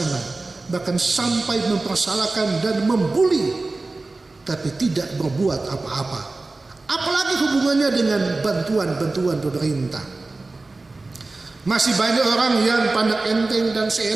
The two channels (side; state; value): left; quieter; 3.3 dB